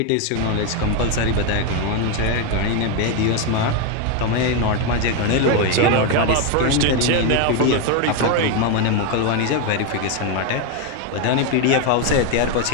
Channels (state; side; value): different; both; correlation 0.02